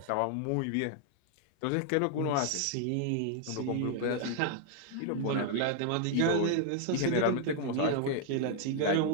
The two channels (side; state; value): both; different; correlation 0.00